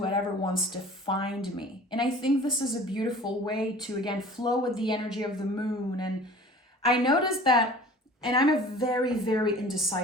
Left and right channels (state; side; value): normal; both; correlation 0.44